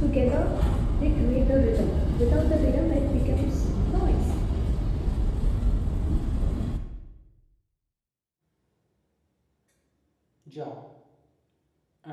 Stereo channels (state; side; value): identical; both; correlation 1.00